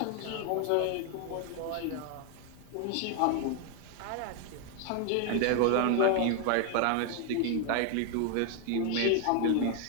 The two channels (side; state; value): both; different; correlation 0.00